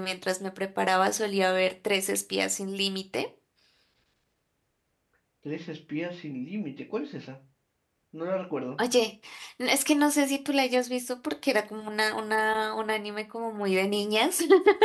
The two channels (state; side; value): identical; both; correlation 1.00